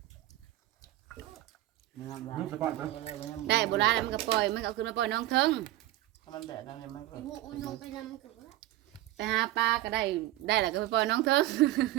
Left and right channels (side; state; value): left; quieter; 15.6 dB